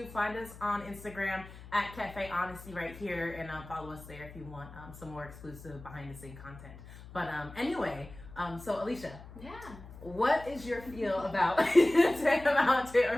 find us on Instagram at Cafe Honesty right here, and follow us there if you want some more exclusive behind the scene content. But anyway, so Alicia, Yeah. what is your feel about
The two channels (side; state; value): left; noise; hum, 16 dB below the sound